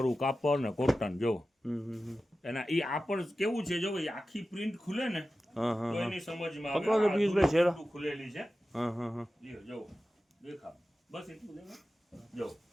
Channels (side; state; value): both; normal; correlation 0.94